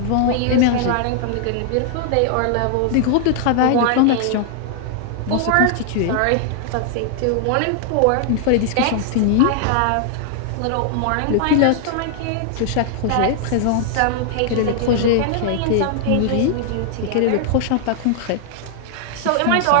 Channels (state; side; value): different; both; correlation 0.00